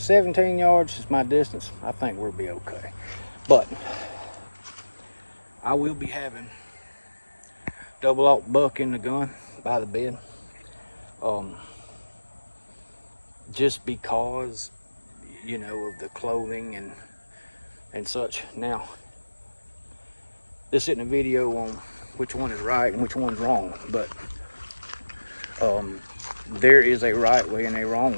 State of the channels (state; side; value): inverted; both; correlation -1.00